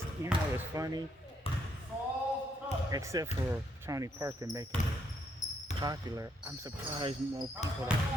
you know, it's funny. Except for Tony Parker making it popular, I'm surprised more people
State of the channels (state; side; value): normal; both; correlation 0.74